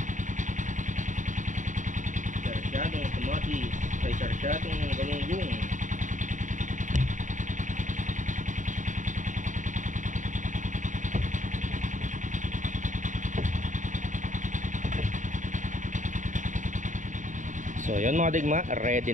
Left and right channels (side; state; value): left; late; 0.36 ms